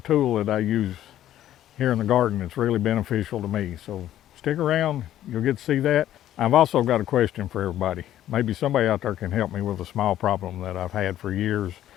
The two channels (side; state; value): right; quieter; 12.3 dB